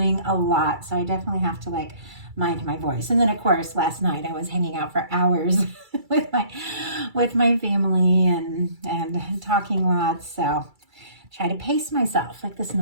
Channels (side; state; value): left; late; 2.3 ms